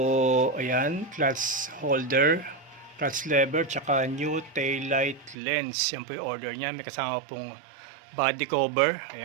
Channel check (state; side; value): drops out; left; at 5.4 s